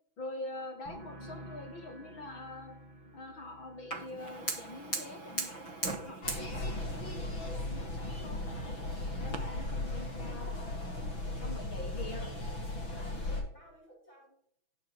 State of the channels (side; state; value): right; late; 6.1 ms